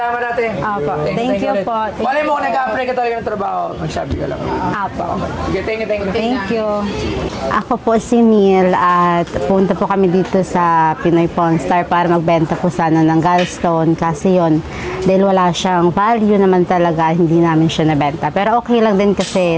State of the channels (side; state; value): both; identical; correlation 1.00